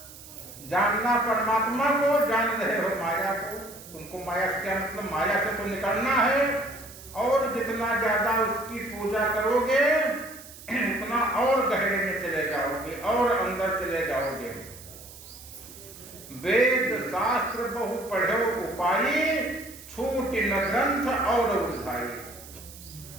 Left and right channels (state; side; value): noise; right; hiss, 17 dB below the sound